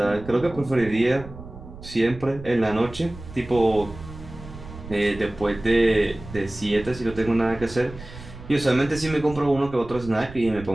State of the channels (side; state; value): right; noise; rumble, 15 dB below the sound